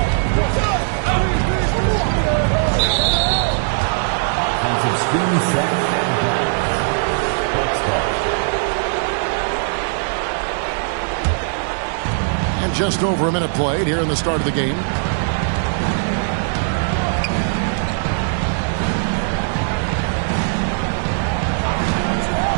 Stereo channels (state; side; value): silent; left; digital silence